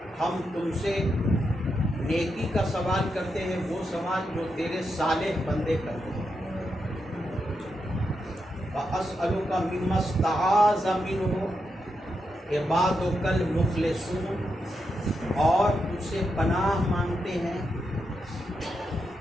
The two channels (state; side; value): normal; both; correlation 0.84